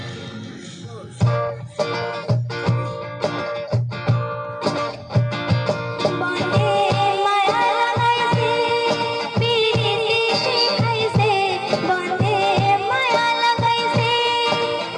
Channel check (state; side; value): identical; both; correlation 1.00